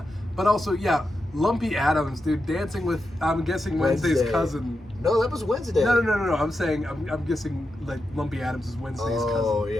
But also, Lumpy Addams, dude, dancing with, I'm guessing, Wednesday's cousin. No, that was Wednesday. No. I'm saying, I'm guessing, like, Lumpy Addams is Wednesday's cousin. Oh,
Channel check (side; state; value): both; normal; correlation 0.88